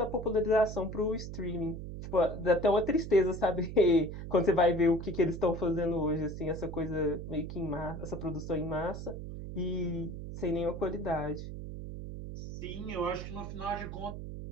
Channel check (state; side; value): noise; right; hum, 8 dB below the sound